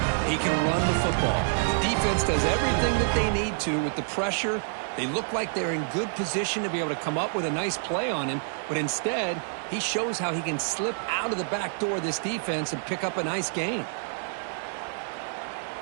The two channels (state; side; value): silent; left; digital silence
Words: he can run the football. The defense does everything that they need to with the pressure. They look like they're in good position to be able to come up with a nice play on him, but instead, he shows how he can slip out of the back door of this defense and pick up a nice gain.